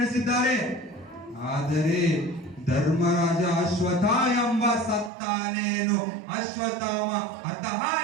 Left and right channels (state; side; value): drops out; left; at 5.1 s